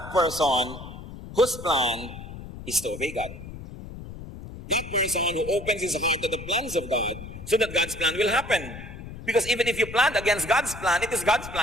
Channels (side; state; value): left; noise; rumble, 12 dB below the sound